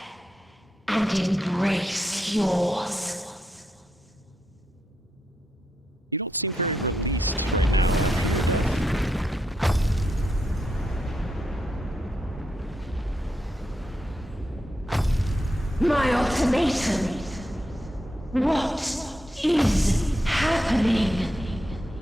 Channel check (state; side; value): normal; both; correlation 0.83